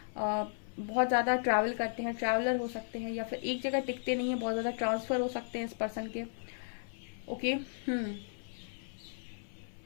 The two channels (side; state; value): right; silent; 54 dB below the other